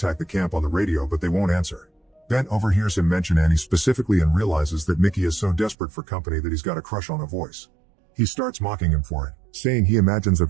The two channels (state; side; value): drops out; left; at 5.8 s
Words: the camp on the radio, but they won't answer. Ben overhears him mention Annie specifically and realizes that Mickey is so desperate for company that he's got a crush on her voice. He starts mocking him for it, saying he imagines a